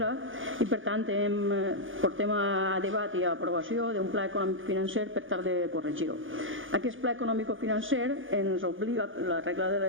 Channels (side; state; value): left; late; 0.58 ms